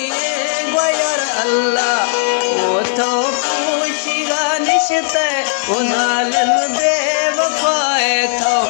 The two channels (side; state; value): right; silent; digital silence